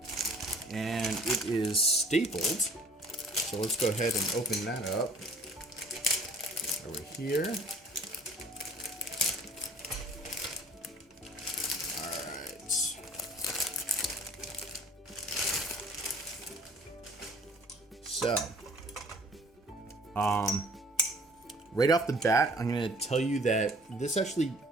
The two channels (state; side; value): normal; both; correlation 0.52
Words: And it is stapled. So let's go ahead and open that up. Over here. All right. So, right off the bat, I'm gonna tell you that this actually